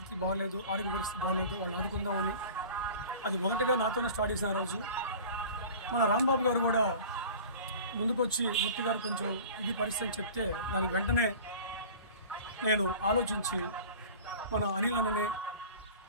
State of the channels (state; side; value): inverted; both; correlation -0.40